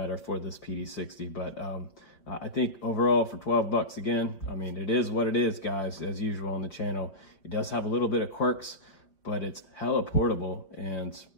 for this PD60. But I think overall for 12 bucks, again, I mean, it is what it is, guys, as usual on the channel. It does have a little bit of quirks, but it's hella portable and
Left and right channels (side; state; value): right; late; 5.2 ms